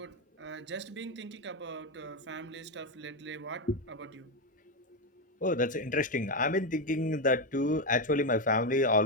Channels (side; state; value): both; normal; correlation 0.08